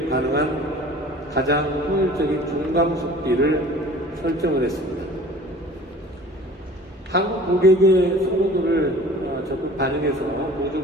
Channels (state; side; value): normal; both; correlation 0.45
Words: 가능한 가장 효율적인 중감 속비를 설정을 했습니다. 한국 고객의 선호도를 적극 반영해서 보조